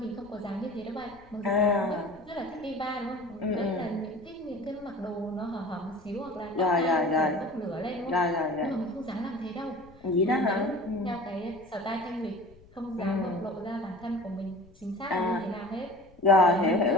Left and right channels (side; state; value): left; noise; rumble, 25 dB below the sound